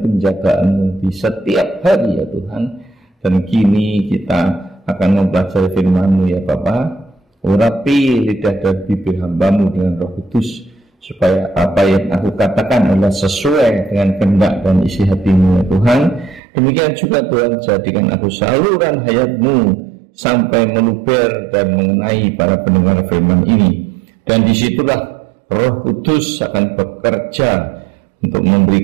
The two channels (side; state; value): left; drops out; at 16.4 s